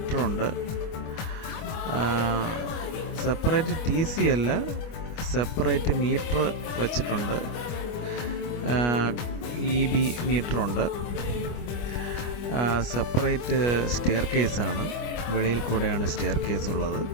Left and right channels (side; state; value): right; late; 25 ms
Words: സെപ്പറേറ്റ് TC അല്ല, സെപ്പറേറ്റ് മീറ്റർ വച്ചിട്ടുണ്ട്. EB മീറ്ററുണ്ട്. സെപ്പറേറ്റ് സ്റ്റെയർ കേസാണ്, വെളിയിൽ കൂടെയാണ് സ്റ്റെയർ കേസ് ഉള്ളത്.